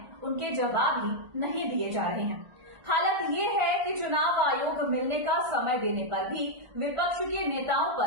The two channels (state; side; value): late; left; 1.4 ms